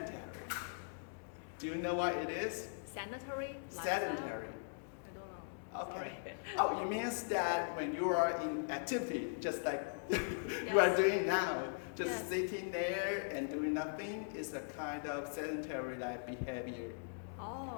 Do you know what it is? Sanitary? Sedentary. I don't know. Okay. Oh, it means that when you are in activity, just like you are doing now, just sitting there and doing nothing is a kind of sedentary life behavior. Oh.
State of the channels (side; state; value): right; silent; digital silence